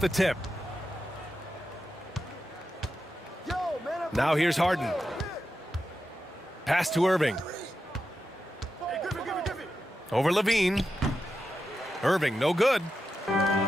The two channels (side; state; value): both; normal; correlation 0.89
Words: tip. Now here's Harden. Pass to Irving. Over Levine. Irving, no good.